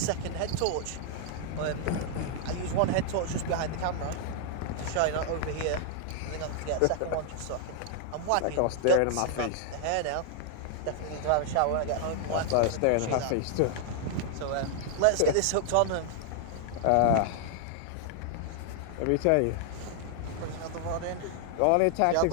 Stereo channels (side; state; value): both; different; correlation 0.00